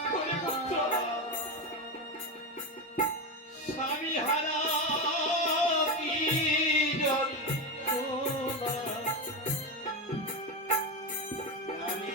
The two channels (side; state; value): both; normal; correlation 0.14